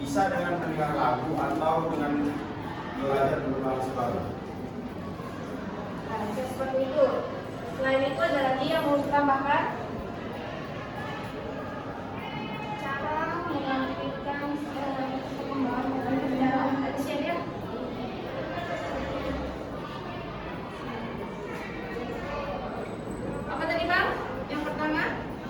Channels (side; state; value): both; identical; correlation 1.00